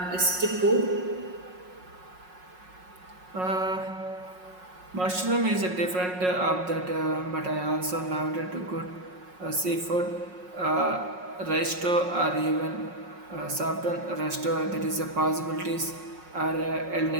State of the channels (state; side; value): late; left; 5.5 ms